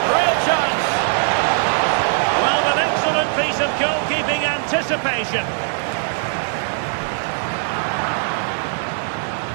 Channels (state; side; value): silent; left; 59 dB below the other